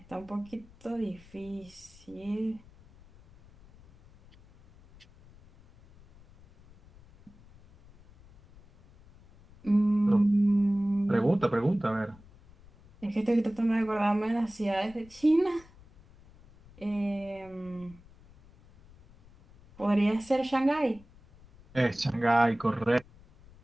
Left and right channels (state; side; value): noise; left; rumble, 25 dB below the sound